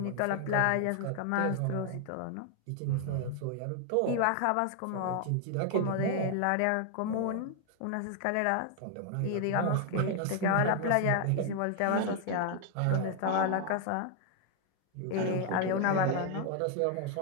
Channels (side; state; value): both; different; correlation 0.00